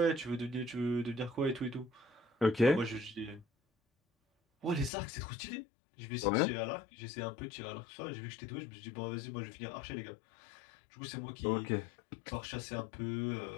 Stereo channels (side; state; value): right; drops out; at 4.9 s